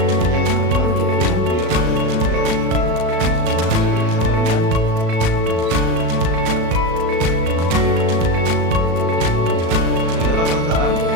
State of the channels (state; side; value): late; left; 36 ms